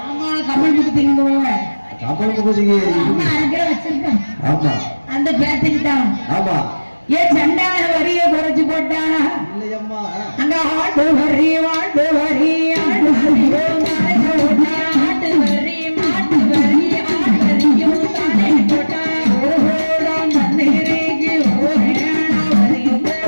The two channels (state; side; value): inverted; both; correlation -1.00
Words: ஆமா கமல் முகத்திங்க போவாங்க. கமல் முகத்திக்கு அரைக்கிற வச்சிருக்கேன். ஆமா அந்த பேத்துக்கு தான். ஆமா ஏன் சண்டான வரிய குறைச்சு போட்டானா இல்லையம்மா. அங்க ஆட்டு வரி மாட்டு வரி ஆட்டு வரியும் ஆட்டு வரி மாட்டு வரி ஆட்டரியும் தானே போட்டா ஒரு ஹோடம் தண்ணீருக்கு ஒரு ஏனா வரியும்